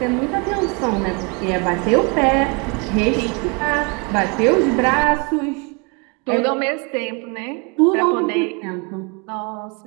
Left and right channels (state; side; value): quieter; left; 32.4 dB